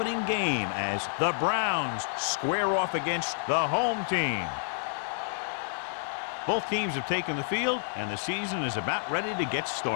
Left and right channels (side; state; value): right; silent; digital silence